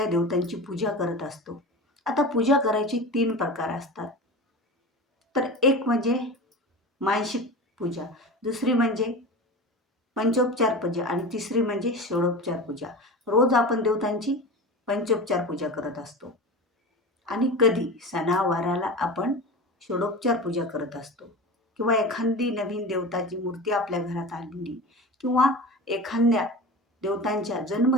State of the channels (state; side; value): normal; both; correlation 0.30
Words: देवतांची पूजा करत असतो. आता पूजा करायची 3 प्रकार असतात. तर एक म्हणजे मानसिक पूजा, दुसरी म्हणजे पंचोपचार पूजा आणि तिसरी म्हणजे षोडोपचार पूजा. रोज आपण देवतांची पंचोपचार पूजा करत असतो आणि कधी सणावाराला आपण षोडोपचार पूजा करत असतो किंवा एखादी नवीन देवताची मूर्ती आपल्या घरात आणली किंवा एखाद्या देवतांच्या